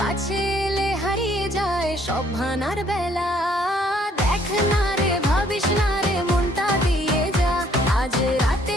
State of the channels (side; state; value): both; normal; correlation 0.64